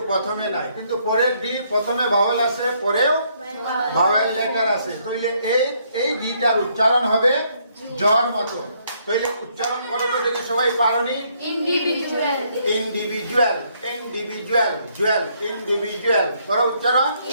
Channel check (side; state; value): both; inverted; correlation -0.70